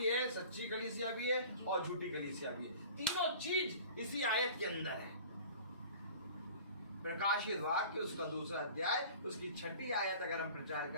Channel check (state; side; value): inverted; both; correlation -0.43